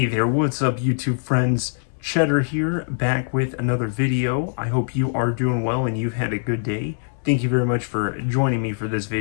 there, what's up YouTube friends? Cheddar here, back with another video. I hope you are doing well and you've had a good day. Thank you very much for joining me for this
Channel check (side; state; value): right; silent; 64 dB below the other